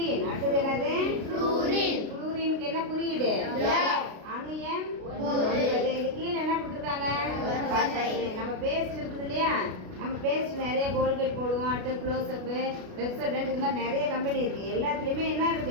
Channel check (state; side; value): late; left; 32 ms